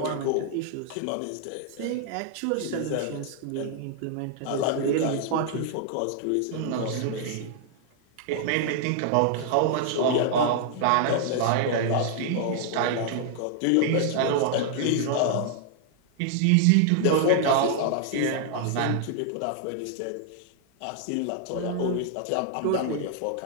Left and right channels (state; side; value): different; both; correlation -0.01